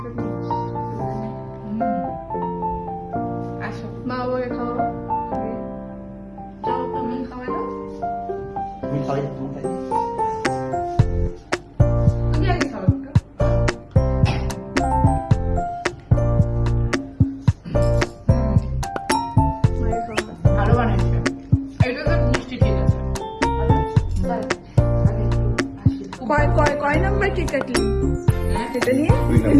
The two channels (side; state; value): both; identical; correlation 1.00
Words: নিস। আসো মা বাবাকে খাওয়াও, যাও তুমি খাওয়া দাও, তুমি খাই তুমি খাই তুমি আগে খাও একটু। মায়ের খাওয়া ভালো বানাইছে, এটা তো মিষ্টি ঠিক আছে। কয় নাম্বার কেক কাটলি? এটা নিয়ে